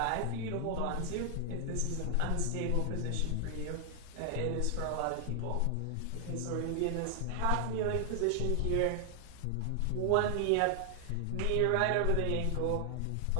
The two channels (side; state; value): both; different; correlation 0.00